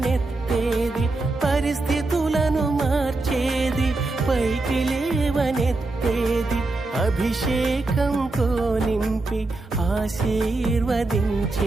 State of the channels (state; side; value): quieter; left; 3.1 dB